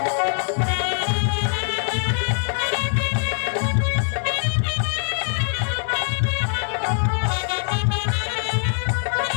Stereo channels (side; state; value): right; silent; digital silence